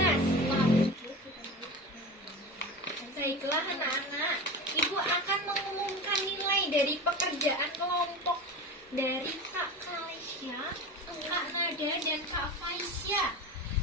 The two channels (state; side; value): normal; both; correlation 0.29